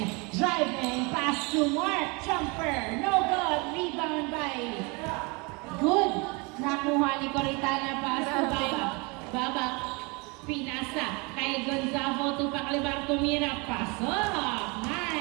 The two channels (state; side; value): quieter; left; 29.1 dB